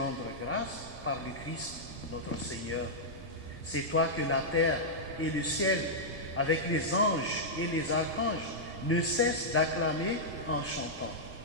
grâce par le Christ, notre Seigneur. C'est toi que la terre et le ciel, avec les anges et les archanges, ne cessent d'acclamer en chantant.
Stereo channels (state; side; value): normal; both; correlation -0.09